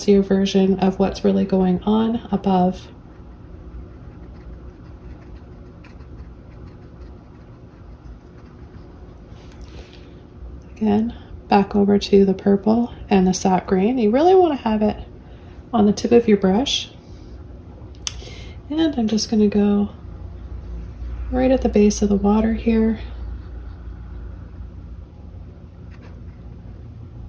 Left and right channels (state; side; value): identical; both; correlation 1.00